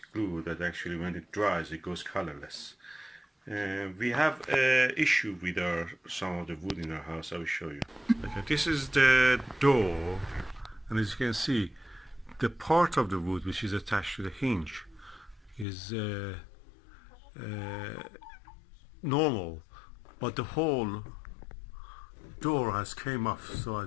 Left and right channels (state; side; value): drops out; right; at 15.7 s